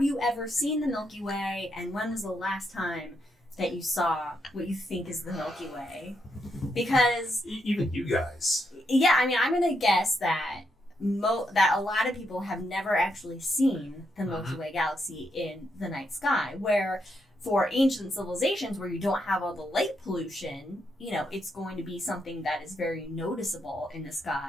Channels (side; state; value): both; normal; correlation 0.80